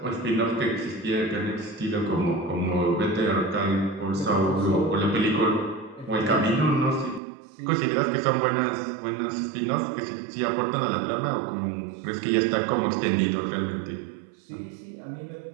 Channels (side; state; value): left; drops out; at 7.2 s